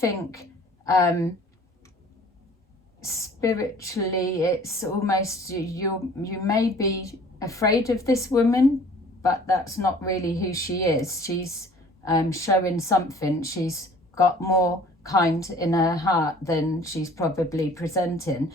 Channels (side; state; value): both; normal; correlation 0.50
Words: spiritually, it's almost, you may be afraid of this woman, but that's not really who she is. She's showing something. She's got more kind in her heart than she's probably presenting,